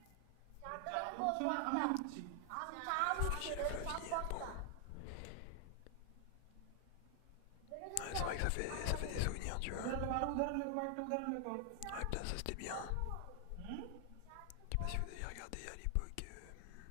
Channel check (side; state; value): both; different; correlation 0.00